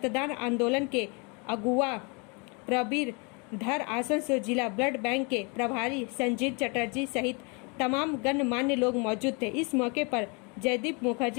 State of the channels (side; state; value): right; quieter; 32.5 dB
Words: आंदोलन के अगुआ प्रबीर धर, आसनसोल जिला ब्लड बैंक के प्रभारी संजीत चटर्जी सहित तमाम गणमान्य लोग मौजूद थे। इस मौके पर जयदीप